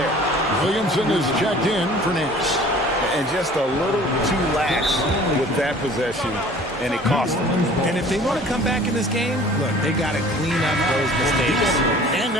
Williamson is checked in for Nance. And just a little too lax with that possession, and it cost them. And if they want to come back in this game, look, they got to clean up those mistakes. And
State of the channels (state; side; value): normal; both; correlation 0.48